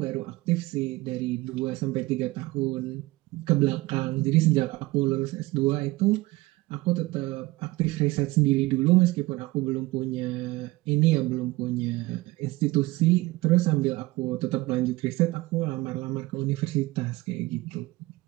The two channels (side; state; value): left; quieter; 20.4 dB